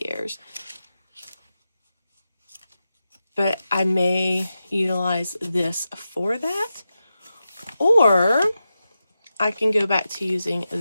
years. But I may utilize this for that. Or I can go back to using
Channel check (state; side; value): inverted; both; correlation -0.91